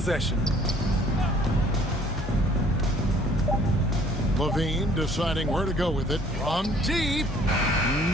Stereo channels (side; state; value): both; normal; correlation 0.57